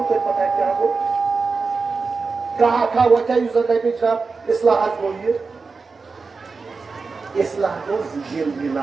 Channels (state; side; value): quieter; left; 4.5 dB